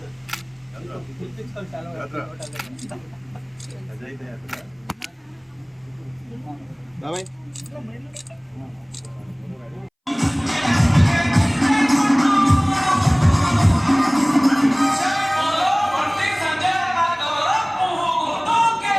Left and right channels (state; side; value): identical; both; correlation 1.00